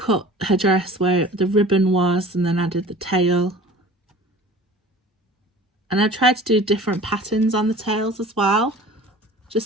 her dress where the ribbon was, and then added the tail. And I tried to do different patterns on the tails as well,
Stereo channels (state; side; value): normal; both; correlation 0.43